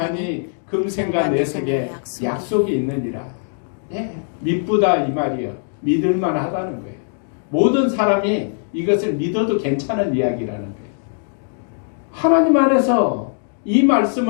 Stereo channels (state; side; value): silent; right; 65 dB below the other